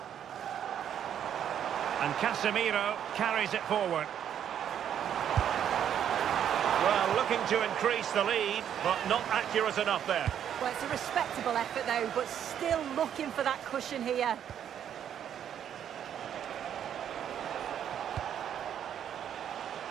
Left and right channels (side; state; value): left; quieter; 9.5 dB